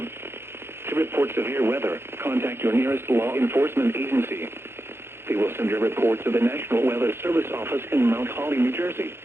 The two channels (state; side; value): late; left; 0.12 ms